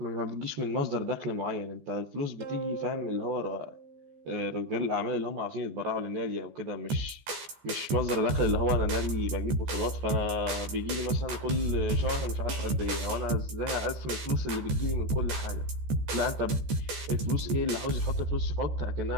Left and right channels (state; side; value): late; left; 14 ms